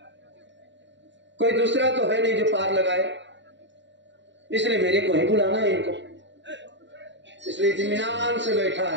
कोई दूसरा तो है नहीं जो पार लगाए, इसलिए मेरे को ही बुलाना है इनको, इसलिए इत्मीनान से बैठा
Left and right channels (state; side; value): late; left; 0.53 ms